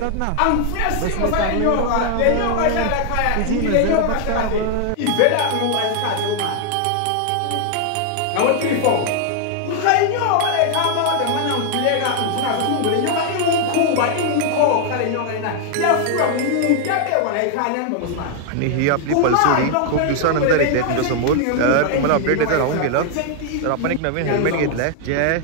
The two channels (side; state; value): both; different; correlation 0.00